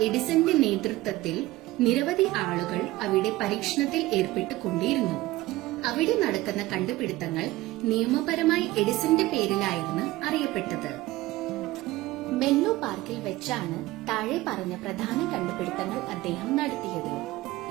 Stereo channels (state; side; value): quieter; left; 18.0 dB